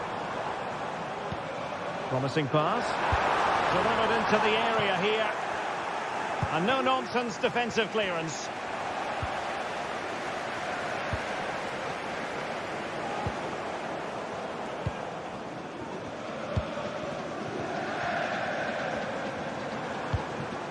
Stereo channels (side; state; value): both; identical; correlation 1.00